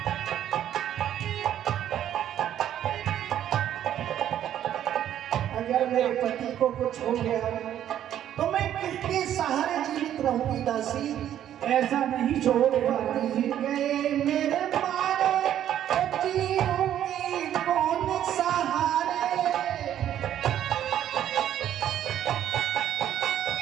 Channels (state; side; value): quieter; left; 10.9 dB